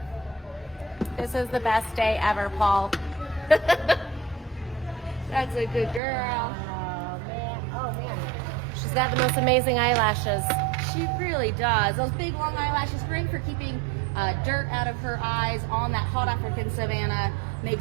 This is the best day ever, Paul. That's a good girl. Oh, man. Oh, man. She's got the most amazing eyelashes. She really does. Those big long eyelashes, great for keeping dirt out of her eyes on that hot African savanna.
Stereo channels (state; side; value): drops out; left; at 6.0 s